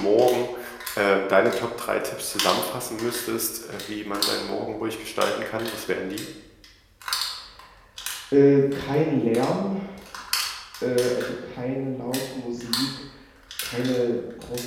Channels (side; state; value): both; identical; correlation 1.00